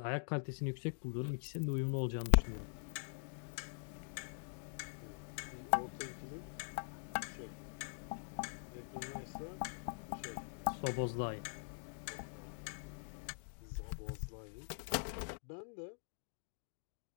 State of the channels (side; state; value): right; silent; digital silence